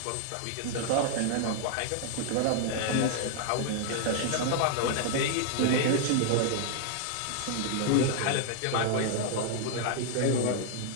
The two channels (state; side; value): different; both; correlation 0.00